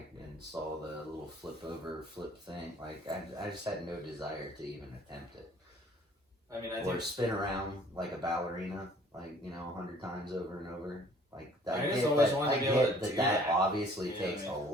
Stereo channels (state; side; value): normal; both; correlation 0.55